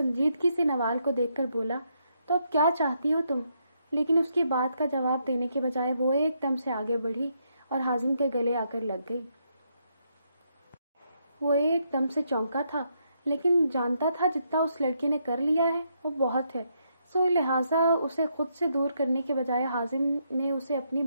سے نوال کو دیکھ کر بولا، تو اب کیا چاہتی ہو تم؟ لیکن اس کی بات کا جواب دینے کے بجائے وہ ایک دم سے آگے بڑھی اور حازم کے گلے آ کر لگ گئی۔ وہ ایک دم سے چونکا تھا، لیکن جانتا تھا جتنا اس لڑکی نے کر لیا ہے وہ بہت ہے، سو لہٰذا اسے خود سے دور کرنے کے بجائے حازم نے اسے اپنی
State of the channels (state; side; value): inverted; both; correlation -0.77